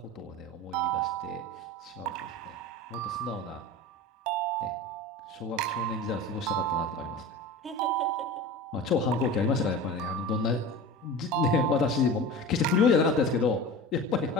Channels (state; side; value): normal; both; correlation 0.33